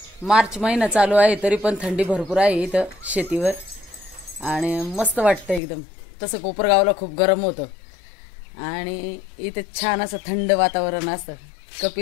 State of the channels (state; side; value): drops out; right; at 5.6 s